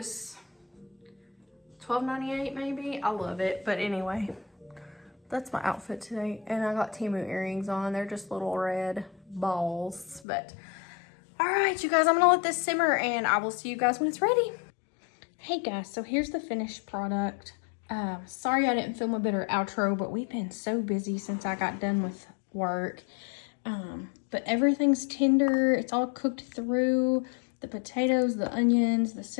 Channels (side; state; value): right; drops out; at 10.2 s